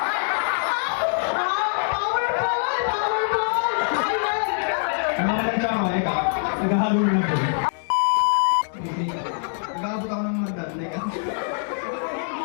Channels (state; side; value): silent; right; digital silence